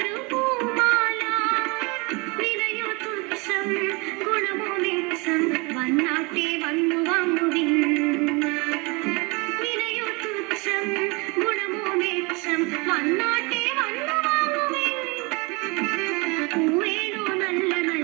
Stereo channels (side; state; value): left; quieter; 28.2 dB